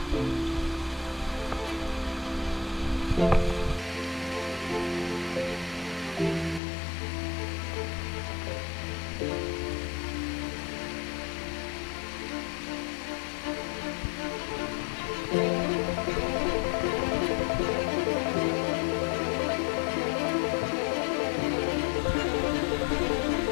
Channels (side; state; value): right; drops out; at 6.6 s